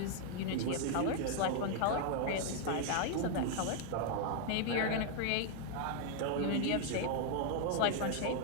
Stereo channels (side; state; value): both; different; correlation 0.00